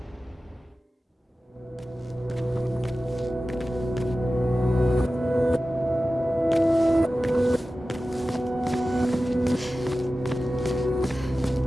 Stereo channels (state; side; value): normal; both; correlation 0.95